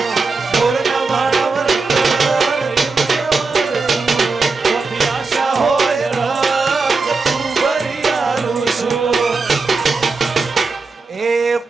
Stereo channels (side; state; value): left; quieter; 4.1 dB